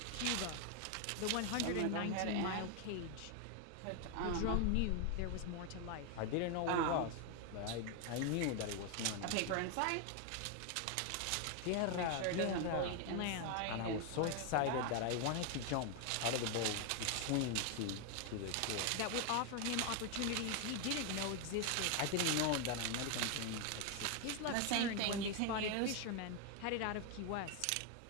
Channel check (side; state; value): both; different; correlation 0.01